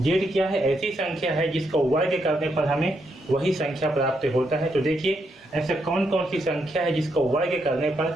क्या है, ऐसी संख्या है जिसका वर्ग करने पर हमें वही संख्या प्राप्त होता है। तो देखिए ऐसा कौन कौन सी संख्या है जिसका वर्ग करने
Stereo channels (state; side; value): normal; both; correlation 0.79